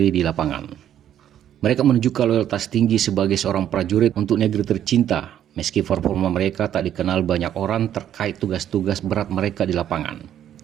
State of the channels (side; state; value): left; quieter; 10.6 dB